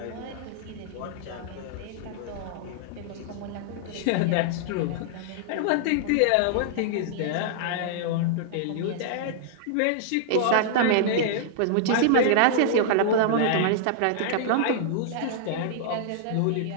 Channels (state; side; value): different; both; correlation -0.01